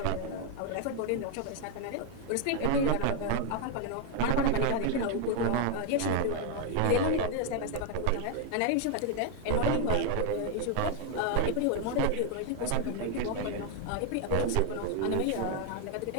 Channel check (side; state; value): both; different; correlation 0.01